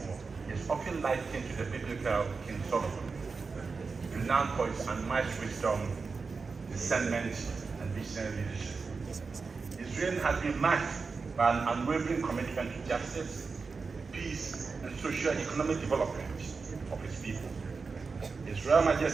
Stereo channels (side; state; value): left; quieter; 4.7 dB